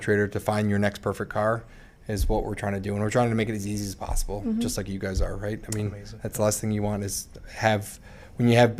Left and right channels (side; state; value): both; identical; correlation 1.00